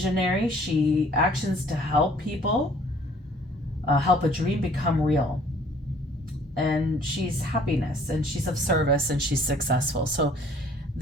She actions to help people, help a dream become real. And she's happiness, and she's of service, and she's successful. So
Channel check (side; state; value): both; normal; correlation 0.56